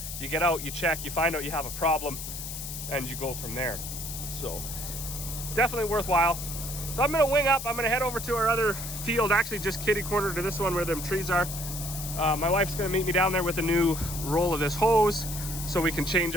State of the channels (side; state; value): left; noise; hiss, 8 dB below the sound